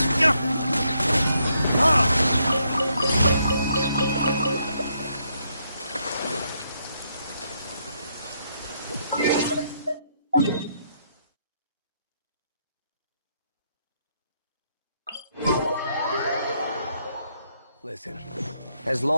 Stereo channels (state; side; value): inverted; both; correlation -0.76